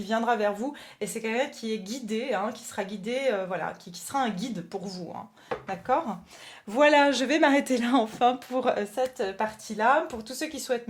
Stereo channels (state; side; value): identical; both; correlation 1.00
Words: viendra vers vous et c'est quelqu'un qui est guidé, hein, qui sera guidé, voilà, qui sera un guide pour vous, hein. D'accord? Voilà, je vais m'arrêter là enfin pour cette partie-là. Pour tous ceux qui souhaitent